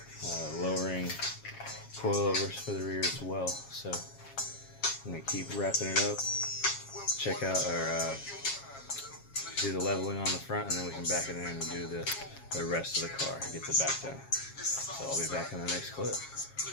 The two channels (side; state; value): right; late; 7.3 ms